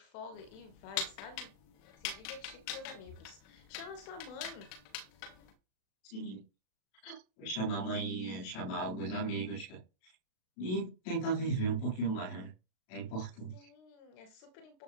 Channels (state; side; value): late; right; 36 ms